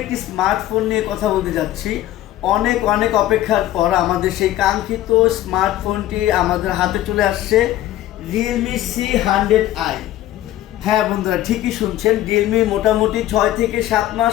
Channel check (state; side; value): quieter; right; 14.0 dB